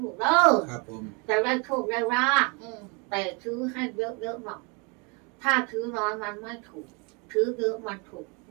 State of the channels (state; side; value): quieter; left; 32.0 dB